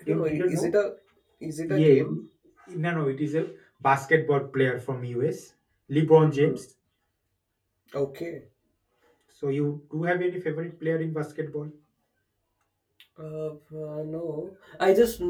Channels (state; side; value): identical; both; correlation 1.00